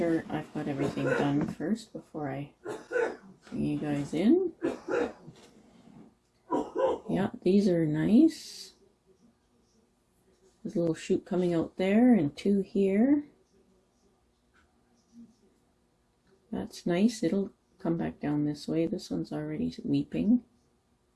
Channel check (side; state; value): both; identical; correlation 1.00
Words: I've got everything done first before I bring you guys in. Yeah, these are nice. There's a little shoot coming out there and two here. That's nice. It'll come back down this way. This one's already weeping.